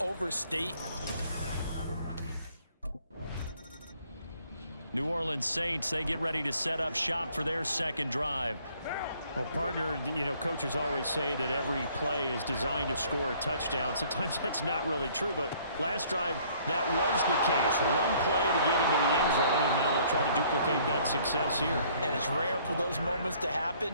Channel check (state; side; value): inverted; both; correlation -0.60